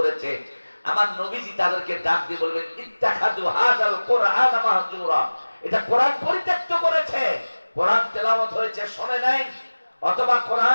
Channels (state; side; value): inverted; both; correlation -1.00